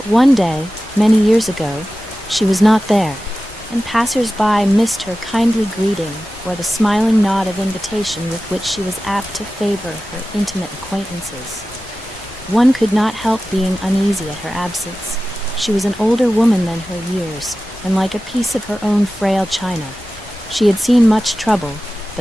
one day, many years ago, she was not there, and passers-by missed her kindly greeting or the smiling nod of invitation with which she was apt to favor her intimate acquaintances. One could not help being uneasy at her absence. She was an older woman than her years, and like a piece of her own frail china. She had seen much trouble,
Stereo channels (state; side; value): normal; both; correlation 0.94